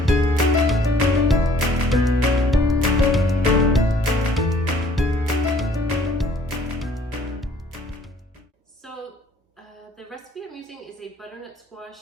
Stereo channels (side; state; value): both; normal; correlation 0.58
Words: So the recipe I'm using is a butternut